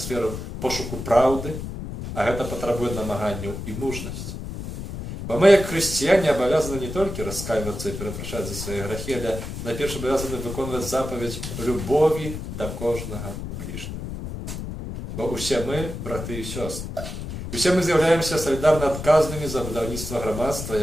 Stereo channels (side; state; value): left; noise; rumble, 7 dB below the sound